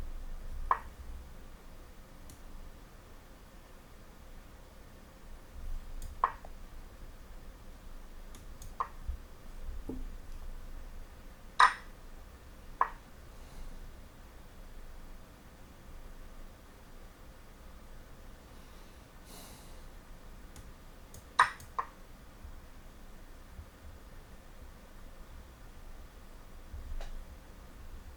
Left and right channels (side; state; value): both; identical; correlation 1.00